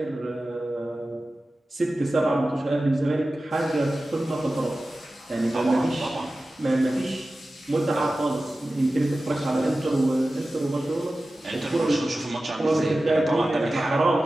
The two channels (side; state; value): both; normal; correlation 0.95